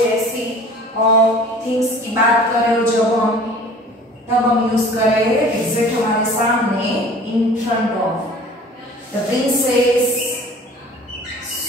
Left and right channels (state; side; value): normal; both; correlation 0.46